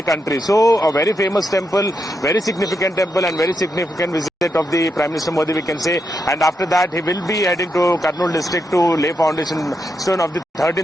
country. So a very famous temple, very significant temple, and very significant visit of the Prime Minister Modi, we can say. And after that, he will be heading to Kurnool district to lay foundation stone of the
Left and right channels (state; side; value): normal; both; correlation 0.83